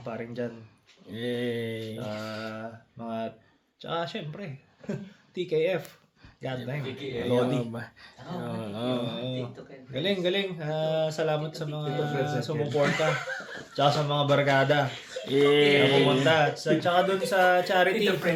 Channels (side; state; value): both; identical; correlation 1.00